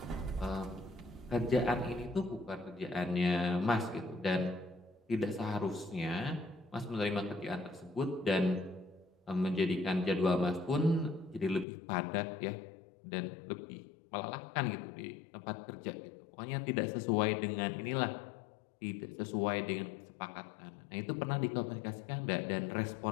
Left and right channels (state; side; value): drops out; right; at 11.7 s